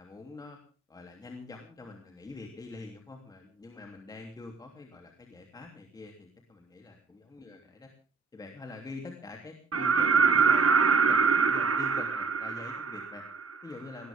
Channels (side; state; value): left; quieter; 4.9 dB